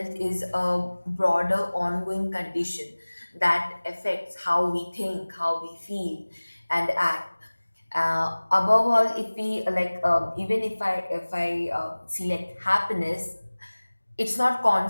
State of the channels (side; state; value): both; inverted; correlation -1.00